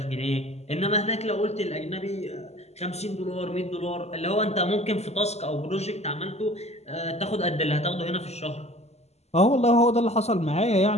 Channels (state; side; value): late; right; 0.31 ms